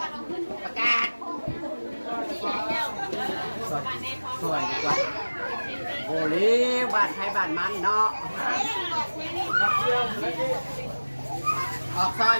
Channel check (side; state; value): both; inverted; correlation -1.00